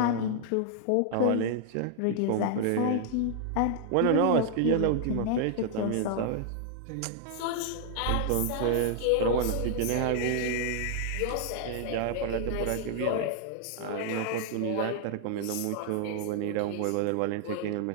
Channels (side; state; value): both; different; correlation 0.00